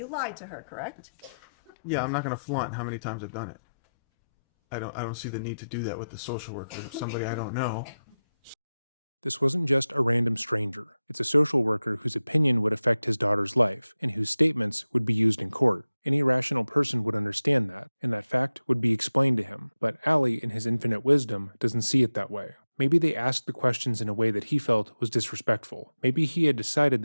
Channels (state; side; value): inverted; both; correlation -0.94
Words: lied to her, correct? Yeah, I'm not gonna flaunt how many times I've done it. I don't see the need to do that with the social worker, somebody I don't know. This wasn't just a random stranger. It's a social worker whose opinion would affect his daughter's life and whose statements would be used in court. Any rational person would understand that, and that fact would be explained to him, but Ali, in his infinite wisdom, doesn't see it that way. Maybe they asked the questions in a way that he felt was disrespectful. Maybe he had decided